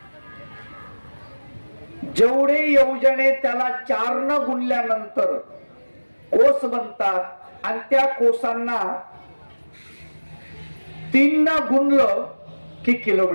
जेवढे योजने त्याला 4 न गुणल्यानंतर कोस बनतात आणि त्या कोसांना 3 न गुणलं की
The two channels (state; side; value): inverted; both; correlation -1.00